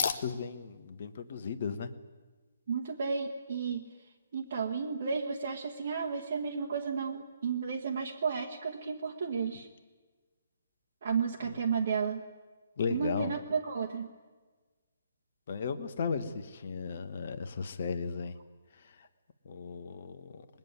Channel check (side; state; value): both; inverted; correlation -0.71